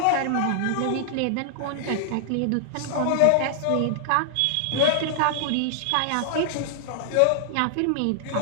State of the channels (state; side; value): different; both; correlation -0.01